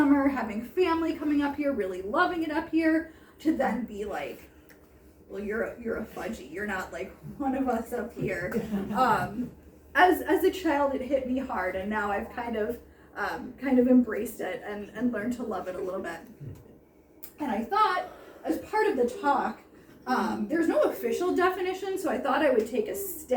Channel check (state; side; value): identical; both; correlation 1.00